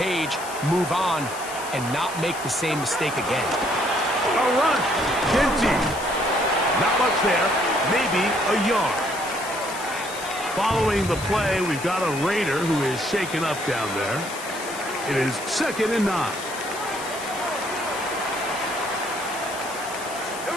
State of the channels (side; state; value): left; noise; hiss, 12 dB below the sound